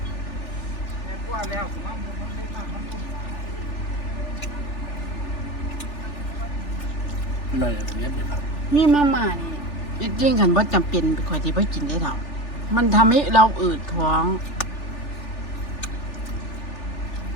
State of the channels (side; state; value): right; late; 3.4 ms